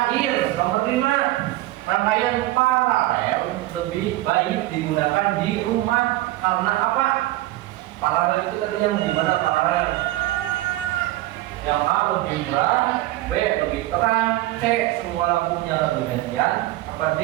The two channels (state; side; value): quieter; left; 16.9 dB